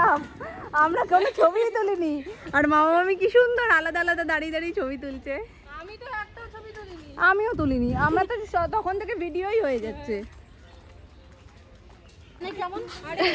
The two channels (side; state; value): both; identical; correlation 1.00